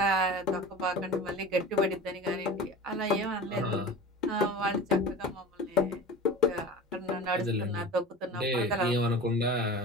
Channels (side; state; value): both; normal; correlation 0.36